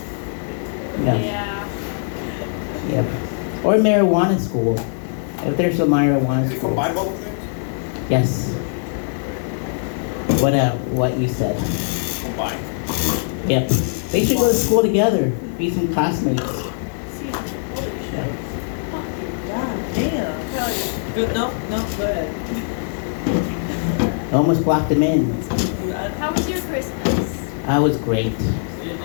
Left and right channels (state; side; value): silent; right; digital silence